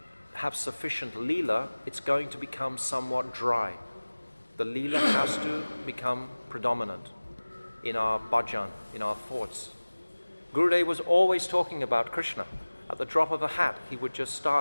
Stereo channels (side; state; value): both; inverted; correlation -1.00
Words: have sufficient Leela, it's going to become somewhat dry. The Leela has to become predominant in our bhajan, in our thoughts. Gurudev was always talking about Krishna. At the drop of a hat, he would just